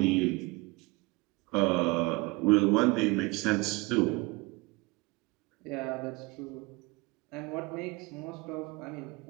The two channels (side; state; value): left; quieter; 25.0 dB